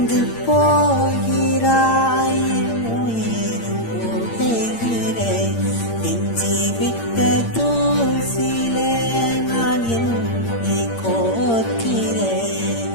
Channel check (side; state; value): right; late; 8.7 ms